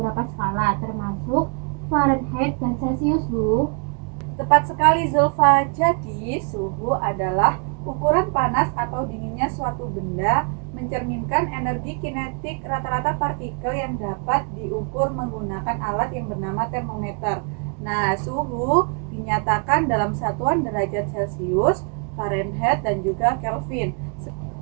skala, termasuk Fahrenheit dan Celcius, Bu. Tepat sekali Zulfa. Jadi suhu adalah ukuran panas atau dinginnya suatu benda, mencerminkan energi kinetik rata-rata partikel yang dapat diukur menggunakan alat yang bernama termometer. Nah, suhu dinyatakan dalam satuan derajat Celcius, Fahrenheit, dan juga Kelvin.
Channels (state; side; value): quieter; left; 39.1 dB